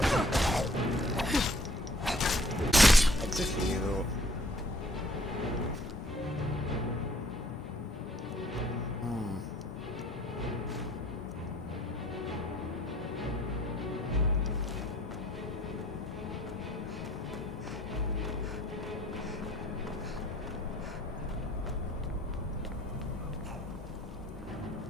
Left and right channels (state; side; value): normal; both; correlation 0.58